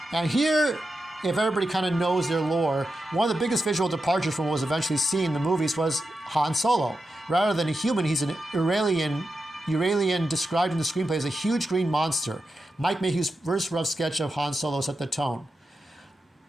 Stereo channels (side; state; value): both; normal; correlation 0.89